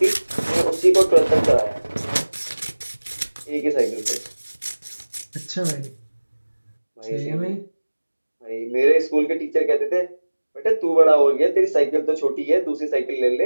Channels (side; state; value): both; inverted; correlation -1.00